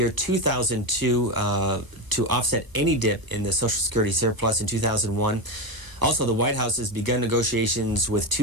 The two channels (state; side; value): late; left; 1.0 ms